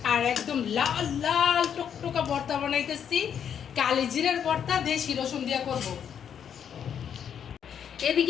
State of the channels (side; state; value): right; quieter; 8.4 dB